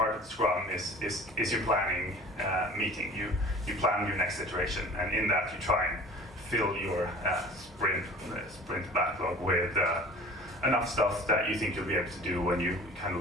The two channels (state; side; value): normal; both; correlation 0.44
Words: of Scrum is your planning meeting. You plan your next iteration, and in that you try and fill your sprint backlog with enough stuff that you think you'll be able to do when you kind